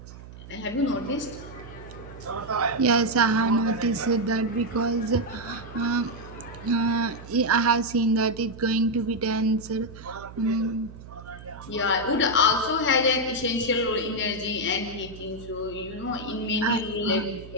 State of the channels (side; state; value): right; noise; hum, 16 dB below the sound